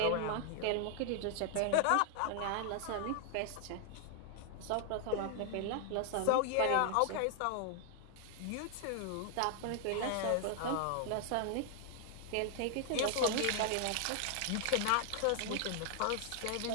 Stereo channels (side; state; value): both; different; correlation 0.00